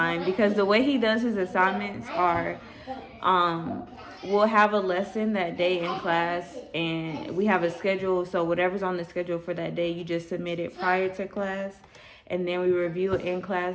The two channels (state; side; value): identical; both; correlation 1.00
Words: Because the way he does his assignments are, we'll have a lesson that day in class, and we have a schedule. So whatever's on the schedule for that day, you just submit it prior to class. And then we review it in